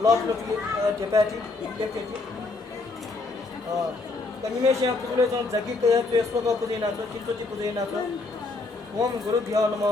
लट लटी ढेपाटी लेप्टेटी कनिमेश्या पुजुले जन जगी कया त्वेस्वक पुजेना छ चित्तोजी पुजेना छ ओम गुरुभ्यो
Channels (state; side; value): quieter; right; 3.5 dB